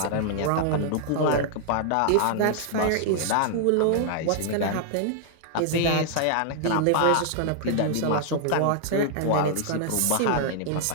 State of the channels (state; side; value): different; both; correlation -0.01